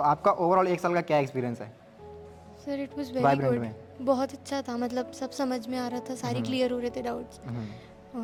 आपका ओवरऑल एक साल का क्या एक्सपीरियंस है sir it was very vibrant good. में? बहुत अच्छा था, मतलब सब समझ में आ रहा था, सारी क्लियर हो रहे थे डाउट्स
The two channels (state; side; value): identical; both; correlation 1.00